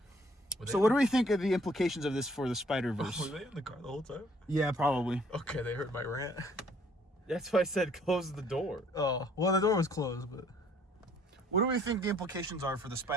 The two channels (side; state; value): both; normal; correlation 0.60